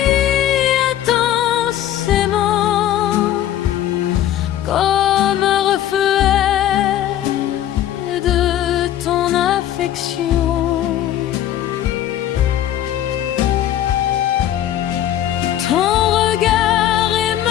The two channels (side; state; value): right; quieter; 11.8 dB